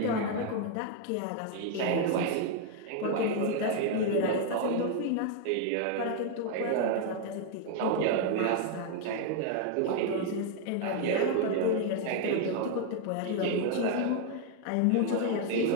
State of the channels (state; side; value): different; both; correlation 0.00